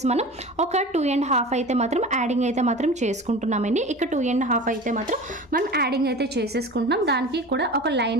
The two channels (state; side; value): normal; both; correlation 0.36